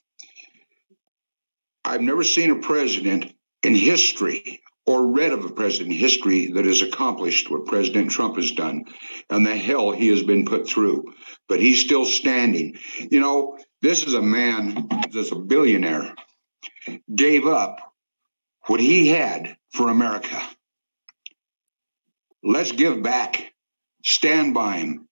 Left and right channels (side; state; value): both; inverted; correlation -1.00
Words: I've never seen a president in history or read of a president in history that has accomplished what President Trump has done and the hell he has been put through. But he's still standing. You know, this is a man that's a billionaire, gave up what he had for America. Let's give back. Stand by him.